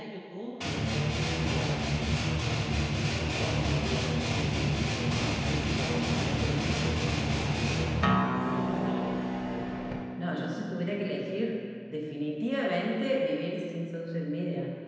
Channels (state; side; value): identical; both; correlation 1.00